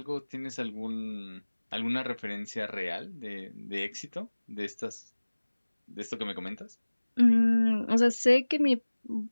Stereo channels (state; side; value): inverted; both; correlation -1.00